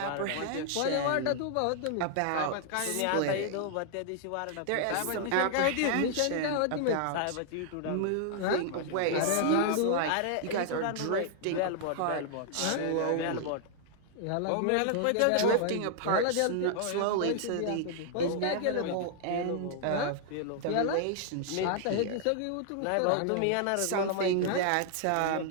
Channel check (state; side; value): different; both; correlation -0.01